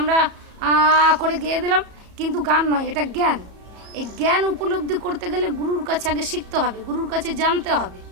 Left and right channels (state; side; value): late; left; 34 ms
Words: করে গেয়ে দিলাম, কিন্তু গান নয়, এটা জ্ঞান। এই জ্ঞান উপলব্ধি করতে গেলে গুরুর কাছে আগে শিখতে হবে, গুরুর কাছে জানতে হবে।